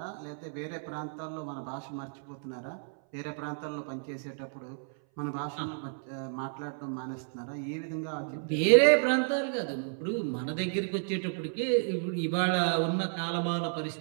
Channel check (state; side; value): silent; left; 57 dB below the other